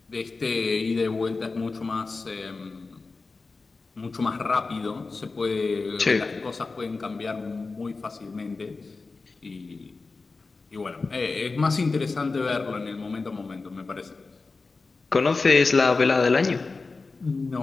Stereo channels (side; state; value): right; quieter; 4.0 dB